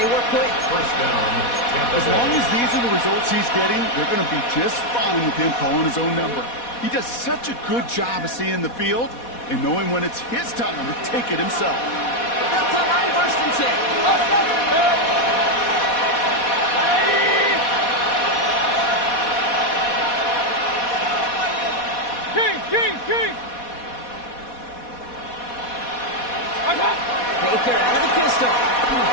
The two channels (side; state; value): right; late; 4.1 ms